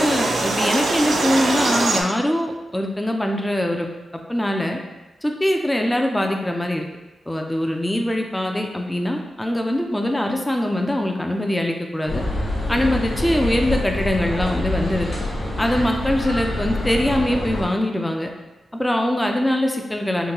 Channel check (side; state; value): both; normal; correlation 0.93